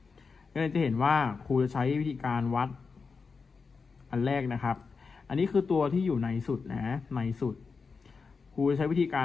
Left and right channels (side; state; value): right; quieter; 4.9 dB